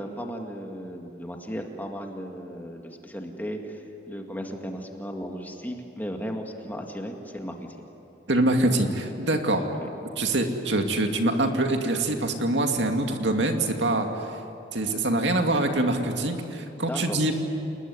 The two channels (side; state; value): both; normal; correlation 0.39